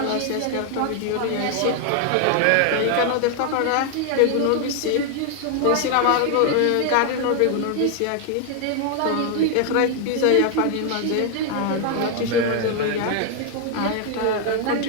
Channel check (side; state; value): both; different; correlation 0.00